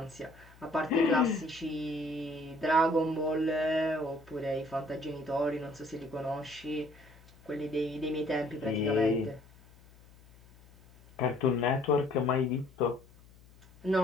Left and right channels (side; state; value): left; noise; hum, 25 dB below the sound